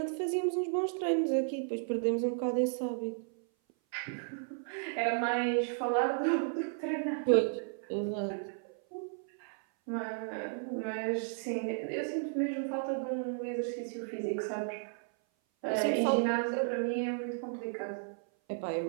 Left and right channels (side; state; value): left; silent; 55 dB below the other